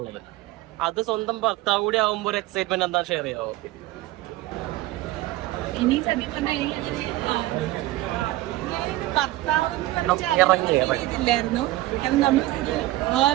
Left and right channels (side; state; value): left; quieter; 17.3 dB